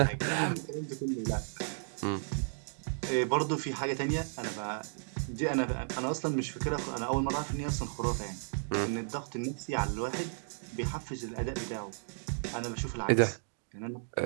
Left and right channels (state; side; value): silent; left; digital silence